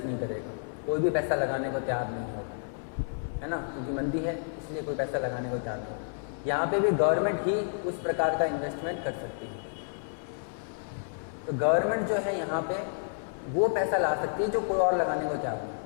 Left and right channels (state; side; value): silent; right; 58 dB below the other